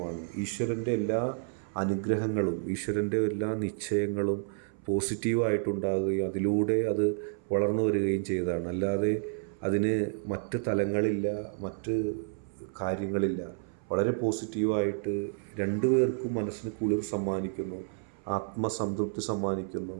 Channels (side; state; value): left; silent; 58 dB below the other